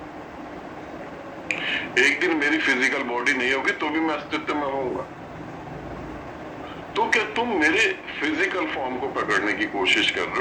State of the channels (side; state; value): both; identical; correlation 1.00